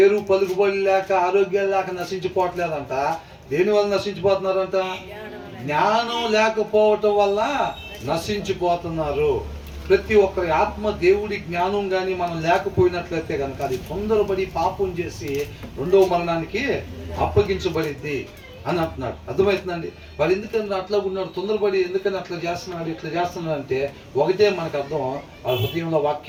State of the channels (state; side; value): identical; both; correlation 1.00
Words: పలుకుబడి లేక, ఆరోగ్యం లేక నశించిపోవట్లేదంట. దేని వల్ల నశించిపోతున్నారంట? జ్ఞానం లేకపోవటం వల్ల నశించిపోతున్నారు. ప్రతి ఒక్కరి ఆత్మ దేవుడి జ్ఞానం కానీ మనం లేకపోయినట్లయితే కనుక అది తొందరపడి పాపం చేసి 2వ మరణానికి అప్పగించబడిద్ది అని అంటున్నాడు. అర్థమవుతుందండి? వాడు ఎందుకని అట్లా ఉన్నాడు, తొందరపడి ఎందుకని అట్లా చేస్తున్నాడు, ఇట్లా చేస్తున్నాడు అంటే ఒకటే మనకు అర్థం, వాళ్ళ హృదయంలో